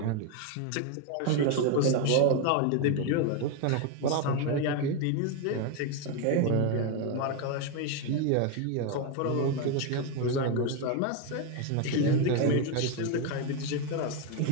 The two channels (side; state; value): both; different; correlation 0.02